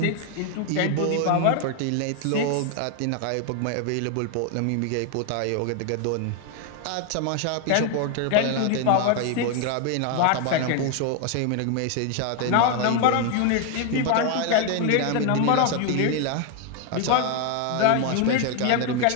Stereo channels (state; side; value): different; both; correlation 0.01